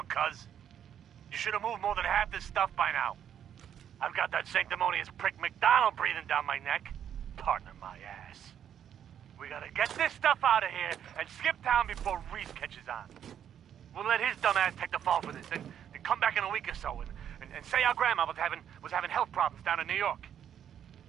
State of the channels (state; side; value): quieter; left; 9.4 dB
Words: cuz? You should have moved more than half this stuff by now. I've got that sanctimonious prick McDonald breathing down my neck. Partner my ass. We gotta get this stuff out of here and skip town before Reese catches on. We'll let his dumb ass take the fall for this and come back in a week or so and say our grandma was having health problems down in New York.